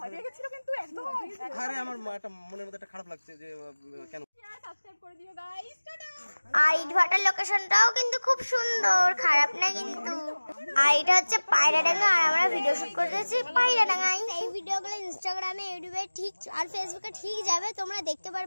হয়ে গেছিল কিন্তু একদম। আরে আমার একটা মনের মধ্যে একটা খারাপ লাগছে যে কেন। সাবস্ক্রাইব করে দিও গাইস, টাটা। আর ইটভাটার লোকেশনটাও কিন্তু খুব সুন্দর, খারাপ না কিন্তু। আর এটা হচ্ছে পায়রাডাঙ্গা, আর আমরা ভিডিও শুট করতেছি পায়রাডাঙ্গায়। এই ভিডিওগুলো ইনস্টাগ্রামে, ইউটিউবে ঠিক আর ফেসবুকে ঠিক যাবে, তোমরা দেখতে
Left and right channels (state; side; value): inverted; both; correlation -1.00